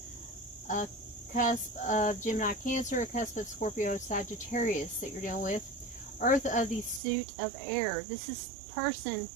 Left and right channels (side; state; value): left; drops out; at 7.0 s